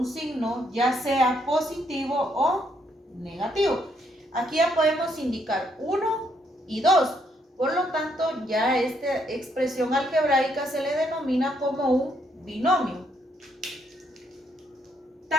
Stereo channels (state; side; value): normal; both; correlation 0.73